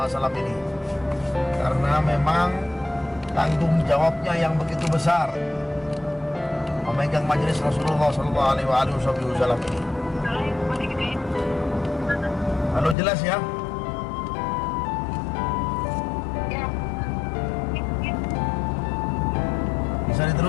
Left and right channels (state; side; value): drops out; right; at 13.0 s